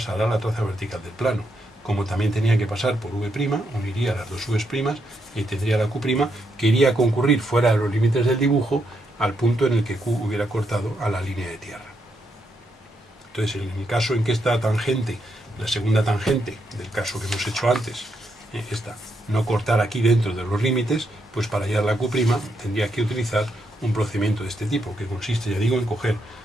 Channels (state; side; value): normal; both; correlation 0.80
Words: la traza vertical del plano. Como también tenía que pasar por V', uniría las dos V's' y tendría la Q' que iría a concurrir fuera de los límites del dibujo al punto en el que Q hubiera cortado a la línea de tierra. Entonces, en el caso en que esta tangente, la segunda tangente del caso que hemos hecho antes, esta, no cortar aquí dentro de los límites, pues para hallar la Q' tendría que utilizar un procedimiento de este tipo, que consiste, ya digo, en coger,